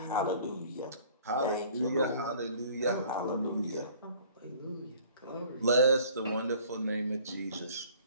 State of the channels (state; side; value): inverted; both; correlation -0.52